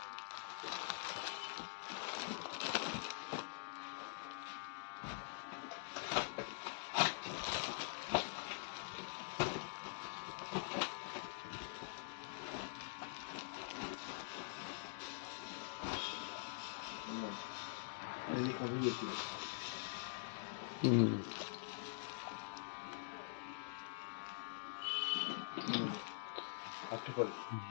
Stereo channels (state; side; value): silent; right; digital silence